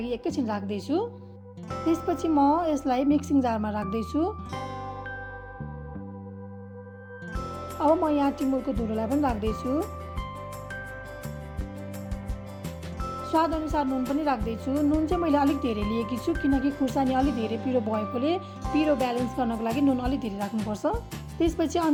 एकैछिन राख्दैछु। त्यसपछि म यसलाई मिक्सिङ जारमा राख्दैछु। अब म यहाँ टिमुरको धुलोलाई पनि राख्दैछु। स्वादअनुसार नुन पनि राख्दैछु। नुन चाहिँ मैले अलिक धेरै लिएकी छु, किनकि खुर्सानी अलिक धेरै पिरो भएकोले पिरो ब्यालेन्स गर्नको लागि नुन अलिक धेरै राख्नुपर्छ। त्यसपछि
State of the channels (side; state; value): both; identical; correlation 1.00